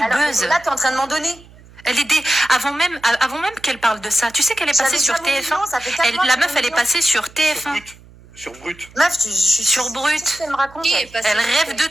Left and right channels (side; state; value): right; noise; hum, 23 dB below the sound